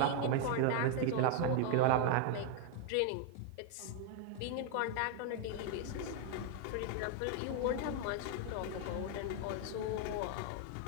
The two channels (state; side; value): different; both; correlation 0.00